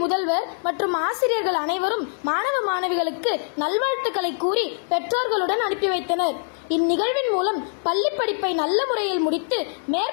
முதல்வர் மற்றும் ஆசிரியர்கள் அனைவரும் மாணவ மாணவிகளுக்கு நல்வாழ்த்துக்களை கூறி பெற்றோர்களுடன் அனுப்பி வைத்தனர். இந்நிகழ்வின் மூலம் பள்ளி படிப்பை நல்ல முறையில் முடித்து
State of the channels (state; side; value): silent; right; digital silence